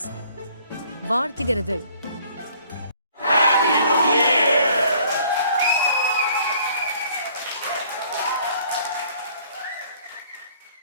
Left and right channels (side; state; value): both; inverted; correlation -0.57